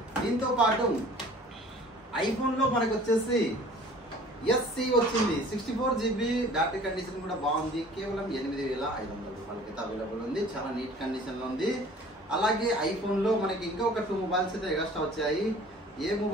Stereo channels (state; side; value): normal; both; correlation 0.49